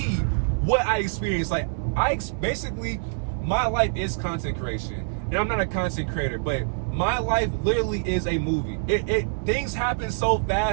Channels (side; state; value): left; silent; digital silence